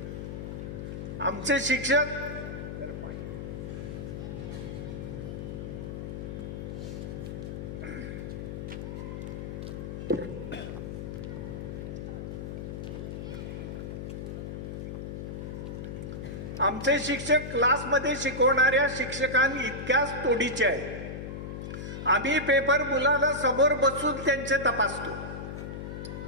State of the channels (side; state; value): left; noise; hum, 6 dB below the sound